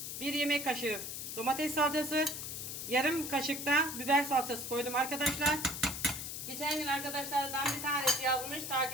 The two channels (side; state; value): left; noise; hiss, 6 dB below the sound